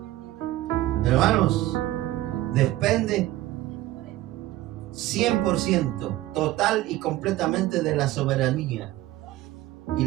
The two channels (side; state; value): left; quieter; 15.9 dB